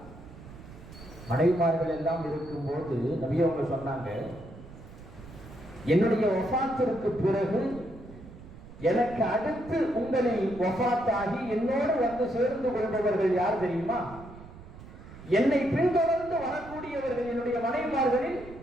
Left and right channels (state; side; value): noise; right; rumble, 17 dB below the sound